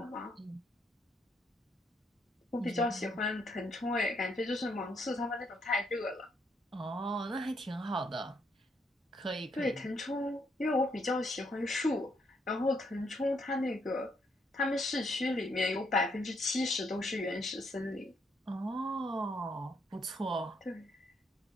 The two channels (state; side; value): normal; both; correlation 0.74